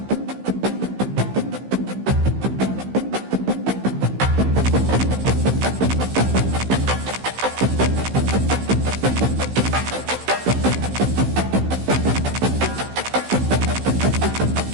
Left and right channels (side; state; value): left; late; 15 ms